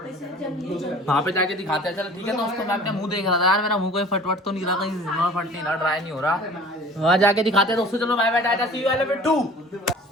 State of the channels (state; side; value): normal; both; correlation 0.45